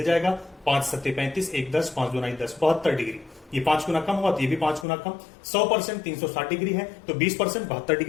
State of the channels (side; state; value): right; drops out; at 4.9 s